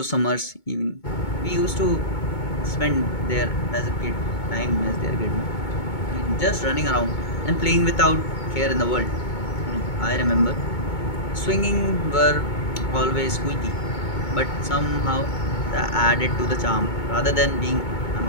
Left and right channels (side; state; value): right; late; 2.2 ms